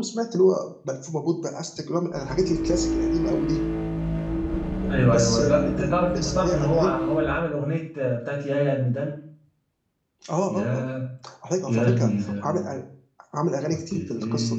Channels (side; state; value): both; identical; correlation 1.00